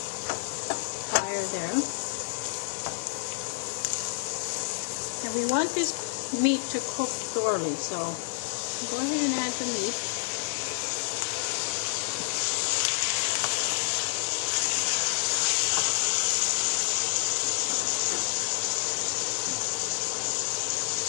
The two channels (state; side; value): silent; right; 59 dB below the other